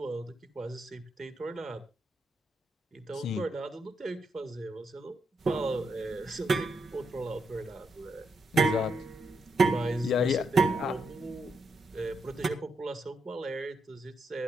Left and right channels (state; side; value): normal; both; correlation 0.81